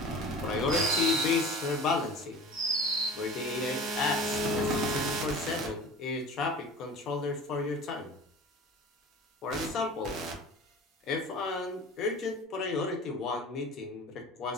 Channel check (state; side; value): normal; both; correlation 0.38